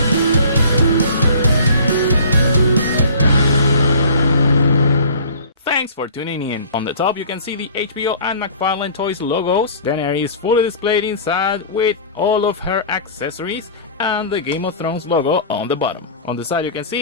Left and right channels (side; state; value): both; inverted; correlation -0.44